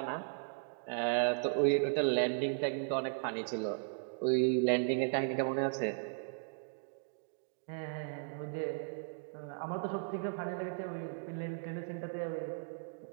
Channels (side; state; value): left; silent; digital silence